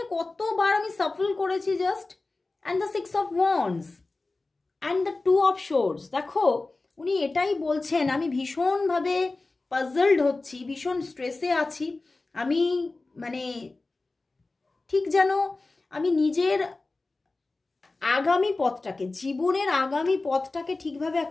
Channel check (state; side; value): quieter; right; 3.4 dB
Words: কতবার আমি সাফল করেছি just, and the 6 of wands and the 2 of swords. দেখো উনি এটাই বলছেন, আমি ভীষণভাবে পাজলড হচ্ছি, ভীষণ স্ট্রেসে আছি, আমি মানে ঠিক যেন আমি নিজের আগামী পথটাকে, জীবনের আগামী পথটাকে ঠিকভাবে